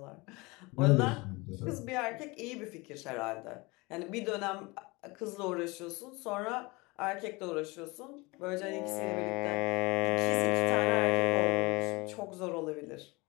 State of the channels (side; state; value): right; quieter; 24.7 dB